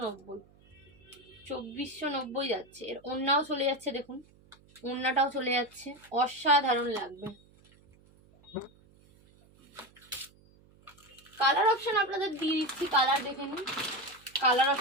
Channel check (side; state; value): right; noise; hum, 28 dB below the sound